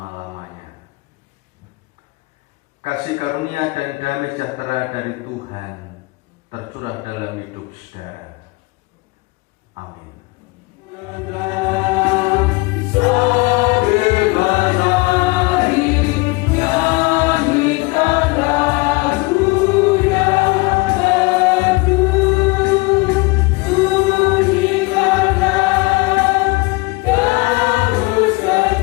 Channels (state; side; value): quieter; right; 25.1 dB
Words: Kasih karunia dan damai sejahtera dari Tuhan tercurah dalam hidup saudara. Amin.